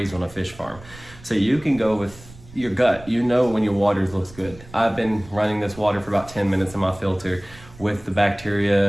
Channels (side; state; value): right; noise; rumble, 20 dB below the sound